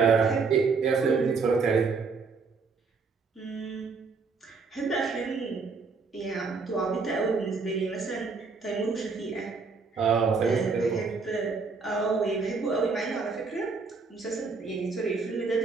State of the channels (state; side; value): quieter; left; 4.7 dB